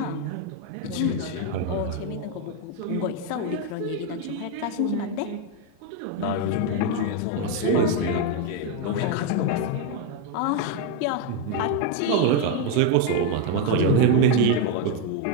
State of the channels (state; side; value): different; both; correlation 0.01